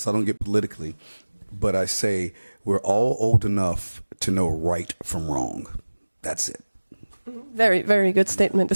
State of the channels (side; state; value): both; inverted; correlation -1.00